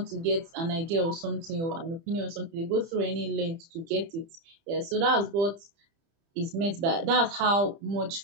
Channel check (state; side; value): late; left; 30 ms